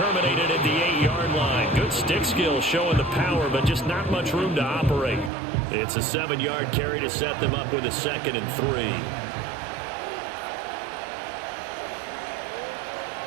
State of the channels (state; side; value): drops out; left; at 5.3 s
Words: at the 8-yard line. Good stick skill showing the power, but just not much room to operate. It's a 7-yard carry to set them up with a 2nd and 3.